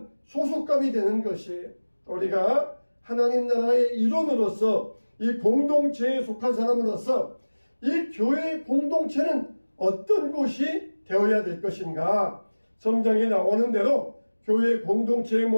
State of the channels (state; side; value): inverted; both; correlation -1.00